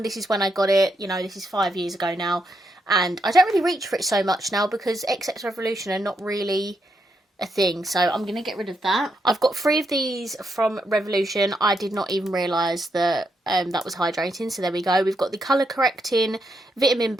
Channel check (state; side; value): normal; both; correlation 0.80